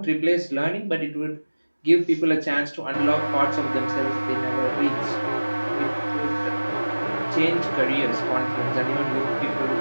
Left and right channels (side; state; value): both; inverted; correlation -1.00